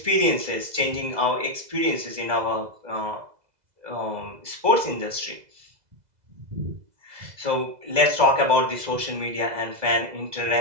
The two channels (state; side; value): late; left; 2.0 ms